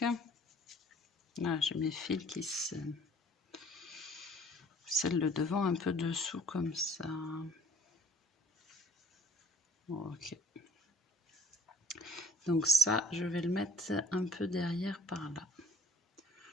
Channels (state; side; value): normal; both; correlation 0.55